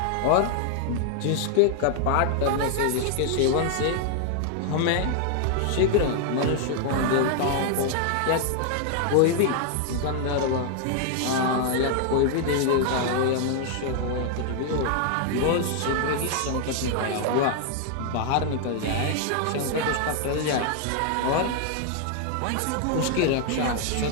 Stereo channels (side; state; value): both; different; correlation 0.00